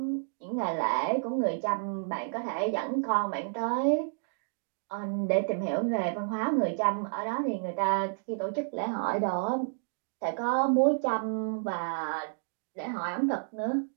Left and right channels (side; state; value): left; silent; digital silence